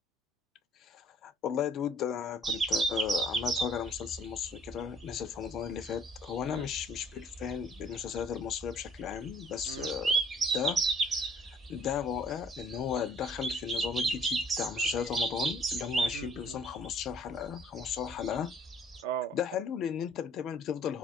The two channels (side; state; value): both; normal; correlation 0.58